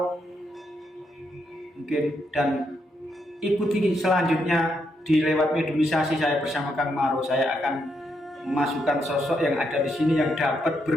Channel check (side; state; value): both; normal; correlation 0.79